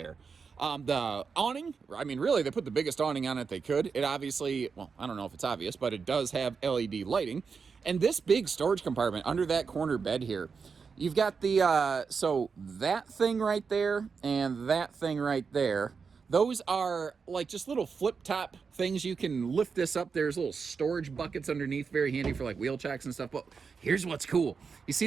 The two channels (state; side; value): quieter; left; 5.5 dB